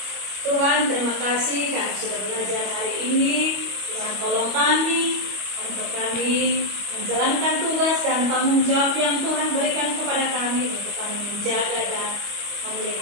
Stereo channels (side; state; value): left; late; 25 ms